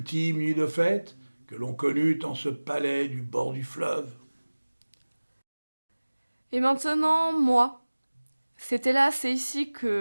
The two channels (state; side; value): inverted; both; correlation -1.00